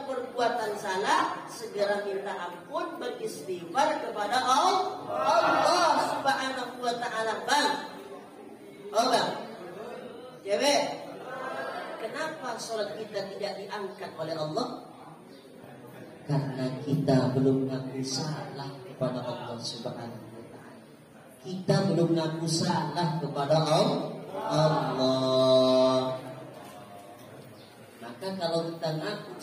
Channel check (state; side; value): identical; both; correlation 1.00